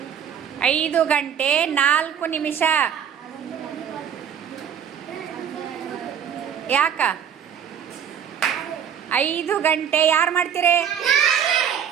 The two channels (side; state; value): left; quieter; 8.4 dB